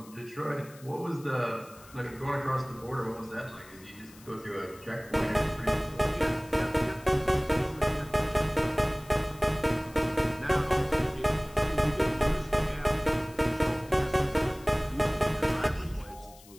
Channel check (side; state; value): left; noise; hiss, 23 dB below the sound